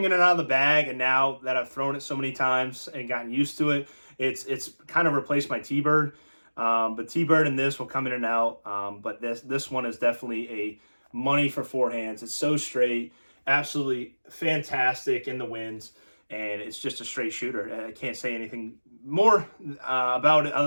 in and out of the bag, and now that I've thrown it so many times and gotten used to it, it's kind of replaced my T-Bird. But T-Bird and this will come in and out. But this one is definitely a money for forehands. It's so straight, absolutely fantastic in the winds, and it's just a straight shooter. I can't say anything more about it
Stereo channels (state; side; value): inverted; both; correlation -1.00